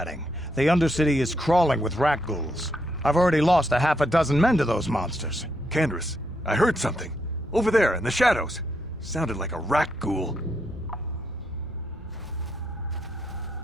The Undercity is crawling with rat ghouls. I've already lost a half a dozen men to those monsters. Candace, I heard something. Over there, in the shadows. Sounded like a rat ghoul.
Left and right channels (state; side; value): normal; both; correlation 0.78